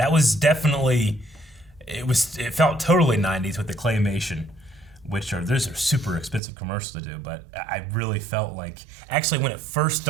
was definitely, it felt totally 90s with the claymation, those are super expensive commercials to do, but I really felt like, actually when it first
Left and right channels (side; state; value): left; drops out; at 6.4 s